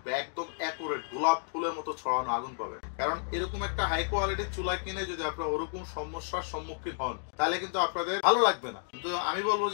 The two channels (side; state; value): right; silent; digital silence